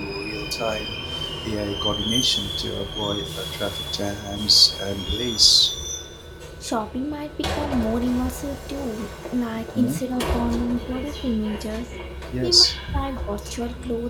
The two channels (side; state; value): both; identical; correlation 1.00